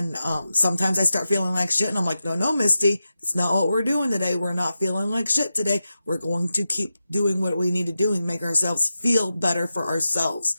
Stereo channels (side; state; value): both; inverted; correlation -0.91